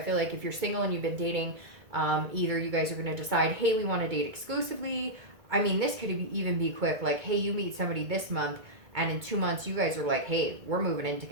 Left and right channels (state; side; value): late; left; 2.2 ms